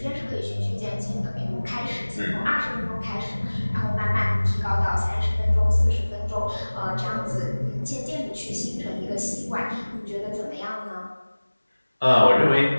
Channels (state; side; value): inverted; both; correlation -1.00